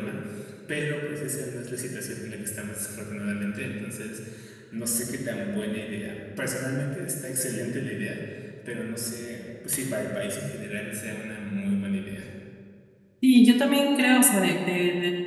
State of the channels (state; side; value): identical; both; correlation 1.00